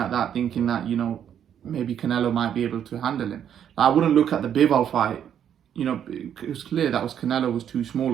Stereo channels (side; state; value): left; quieter; 9.3 dB